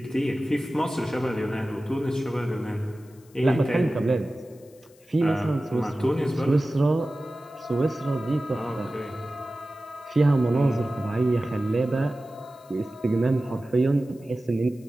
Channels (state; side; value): noise; left; hiss, 29 dB below the sound